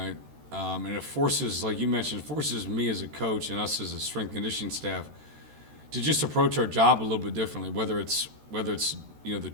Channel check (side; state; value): left; late; 13 ms